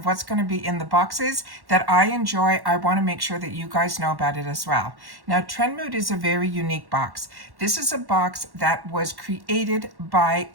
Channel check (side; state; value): left; late; 1.1 ms